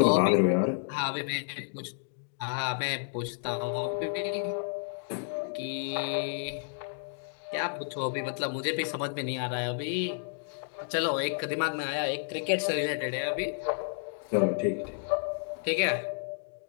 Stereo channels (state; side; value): silent; right; digital silence